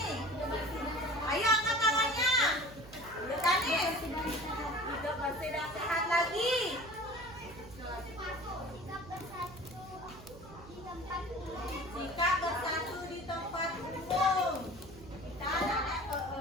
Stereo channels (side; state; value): right; noise; hum, 17 dB below the sound